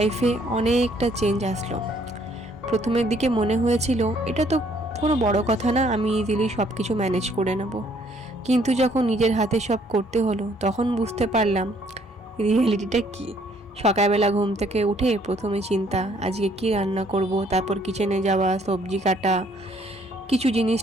অনেকটা চেঞ্জ আসলো। প্রথমের দিকে মনে হয়েছিল এটা তো কোনো বড় কথা না, আমি ইজিলি সব কিছু ম্যানেজ করে নেব। কিন্তু যখন নিজের হাতে সব করতে হলো তখন বুঝতে পারলাম রিয়েলিটিটা কী। সকালবেলা ঘুম থেকে উঠে প্রথমে চিন্তা আজকে কি রান্না করব, তারপর কিচেনে যাওয়া, সবজি কাটা, কিছু জিনিস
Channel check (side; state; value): both; normal; correlation 0.64